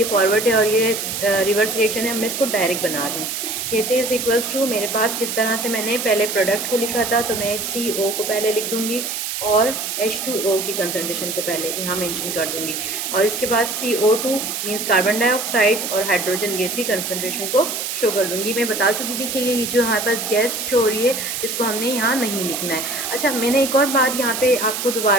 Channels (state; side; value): noise; right; hiss, 4 dB below the sound